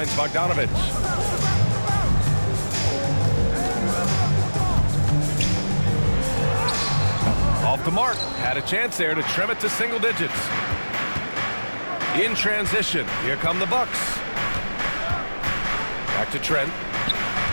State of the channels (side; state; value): both; inverted; correlation -1.00